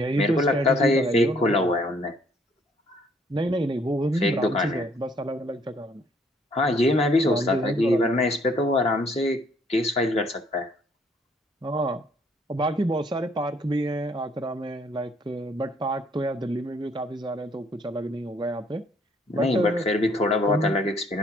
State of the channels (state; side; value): normal; both; correlation 0.64